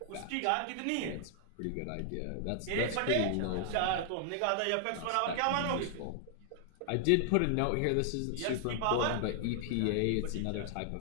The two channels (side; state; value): both; different; correlation 0.00